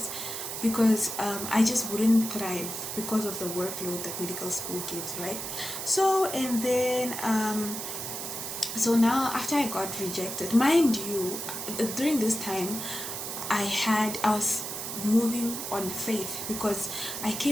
because I just wouldn't thrive because of the workload that medical school gives, right? So, and then so now after I got rejected, mind you, during this time I was moving on faith, because I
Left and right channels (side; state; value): right; noise; hiss, 5 dB below the sound